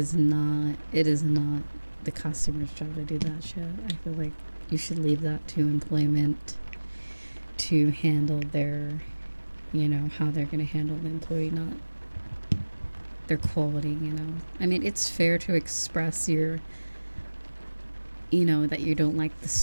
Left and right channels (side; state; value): both; inverted; correlation -1.00